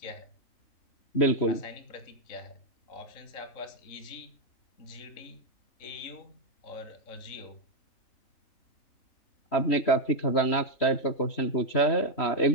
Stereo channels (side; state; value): right; late; 3.1 ms